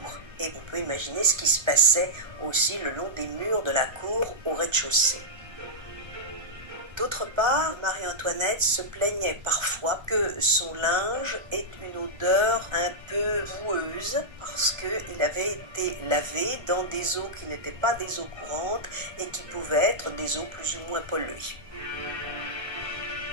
Et on peut imaginer ce qui se passait aussi le long des murs de la cour au rez-de-chaussée. D'autre part, Marie-Antoinette se plaignait parfois que son linge ait une odeur un peu boueuse parce qu'il avait été lavé dans des eaux qui n'étaient pas des eaux courantes et qui pouvaient être des eaux plus ou moins polluées.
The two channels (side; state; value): left; late; 1.4 ms